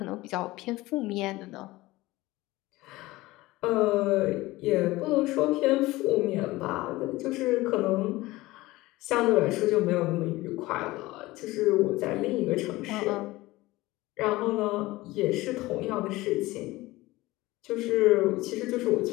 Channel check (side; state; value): right; quieter; 19.2 dB